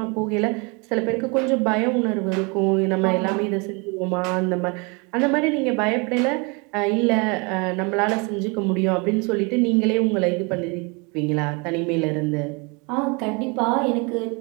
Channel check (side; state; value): left; quieter; 30.6 dB